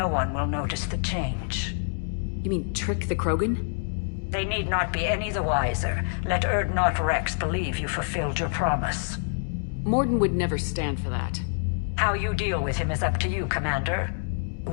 one will notice the change. You mean trick the Krogan? They need not be any the wiser. Let Urdnot Rex believe you fulfilled your promise. Morden would never stand for that. How you deal with him is up to you, Commander.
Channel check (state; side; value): silent; right; 60 dB below the other